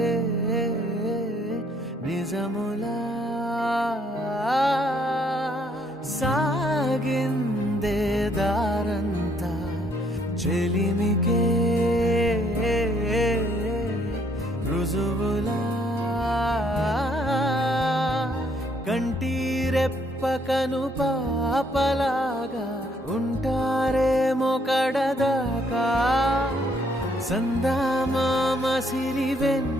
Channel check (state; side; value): normal; both; correlation 0.68